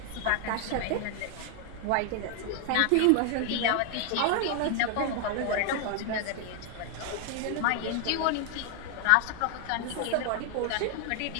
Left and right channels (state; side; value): different; both; correlation 0.00